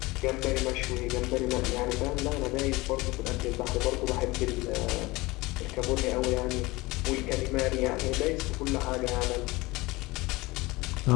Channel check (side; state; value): right; quieter; 21.6 dB